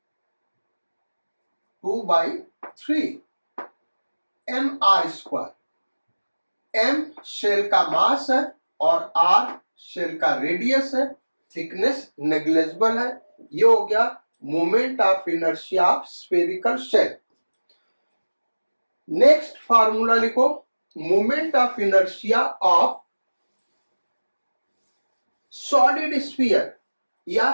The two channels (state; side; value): inverted; both; correlation -1.00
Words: mr²। m shell का मास है और r शेल का रेडियस है, थिकनेस नेग्लिजिबल है। ये हो गया moment of inertia of spherical shell. Next formula लिखो, moment of inertia of solid sphere, या